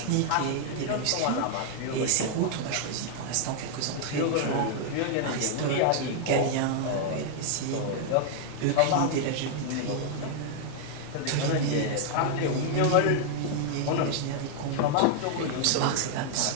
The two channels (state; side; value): different; both; correlation 0.00